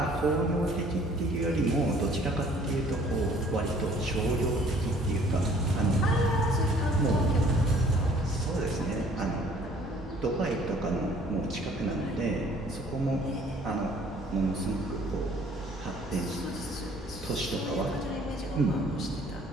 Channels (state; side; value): normal; both; correlation 0.56